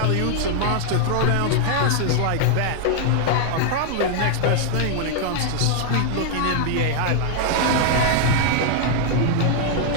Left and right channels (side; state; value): both; different; correlation 0.00